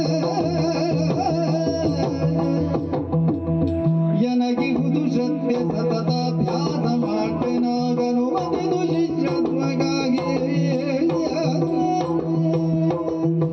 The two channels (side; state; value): both; identical; correlation 1.00